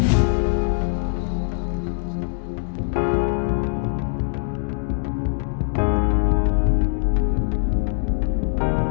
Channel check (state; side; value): silent; right; digital silence